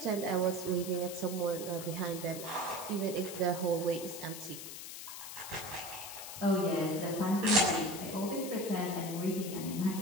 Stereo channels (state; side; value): noise; left; hiss, 9 dB below the sound